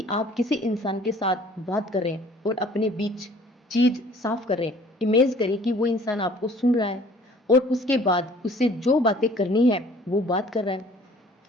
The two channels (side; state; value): both; normal; correlation 0.53